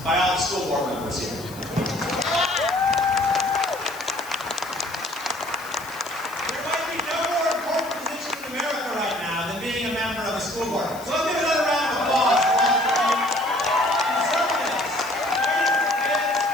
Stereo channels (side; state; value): left; noise; hiss, 18 dB below the sound